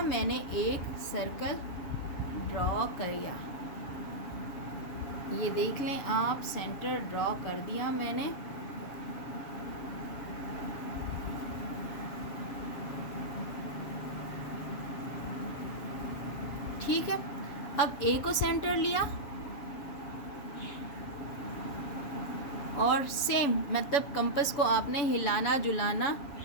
मैंने एक सर्कल ड्रॉ किया। ये देख लें आप, सेंटर ड्रॉ कर दिया मैंने। ठीक है, अब ए को सेंटर लिया और सेम, मतलब कंपास को आपने हिलाना जुलाना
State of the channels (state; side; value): late; right; 7.0 ms